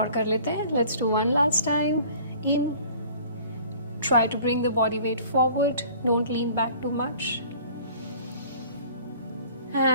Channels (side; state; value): both; inverted; correlation -0.49